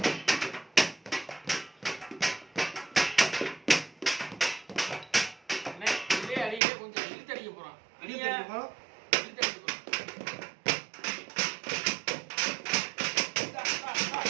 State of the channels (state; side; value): drops out; left; at 6.6 s